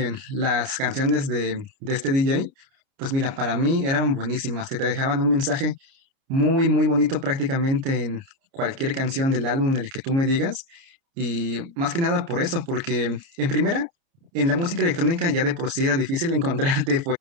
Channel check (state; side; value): late; left; 29 ms